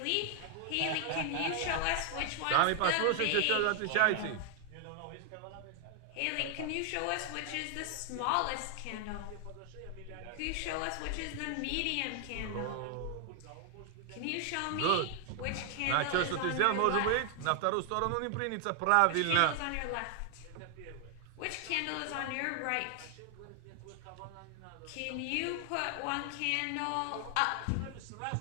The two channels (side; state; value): both; different; correlation 0.00